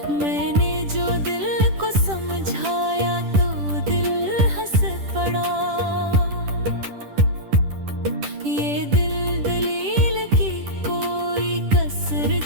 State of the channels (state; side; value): late; left; 10 ms